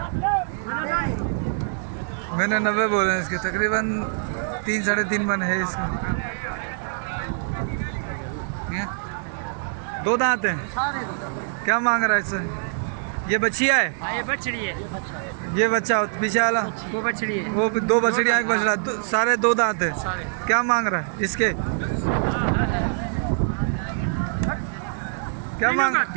मैंने 90 बोले हैं इसके। तकरीबन 3-3.5 मन है इसका। दो दांत हैं। क्या मांग रहा है इससे? ये बच्चिया है? ये बछड़ी है। ये बच्चा पीछे वाला वो बछड़ी है। वो दो बछड़ियाँ एक बछड़ा, सारे दो दांत है। सारे। क्या मांग रहा है इसके? क्या मांग?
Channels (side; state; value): left; silent; 62 dB below the other